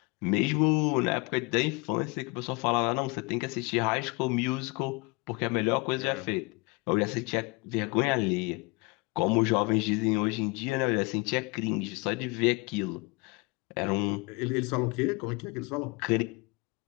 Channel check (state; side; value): quieter; right; 27.2 dB